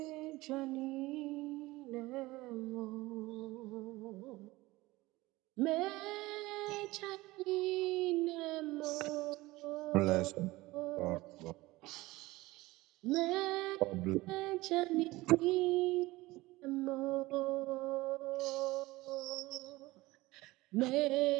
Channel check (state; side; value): quieter; left; 19.8 dB